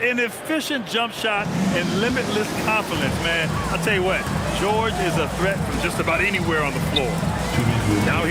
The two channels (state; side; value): identical; both; correlation 1.00